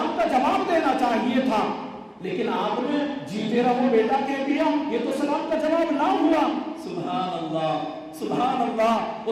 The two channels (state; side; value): identical; both; correlation 1.00